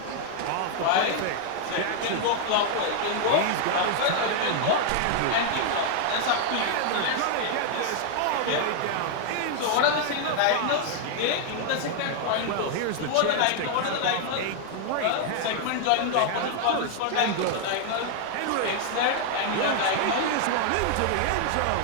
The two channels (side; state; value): both; different; correlation 0.00